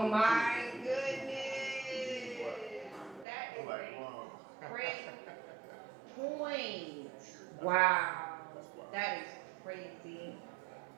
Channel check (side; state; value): left; drops out; at 3.2 s